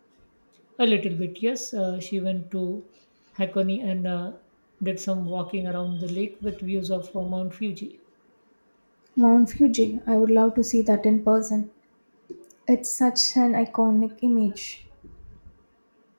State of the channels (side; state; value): both; inverted; correlation -1.00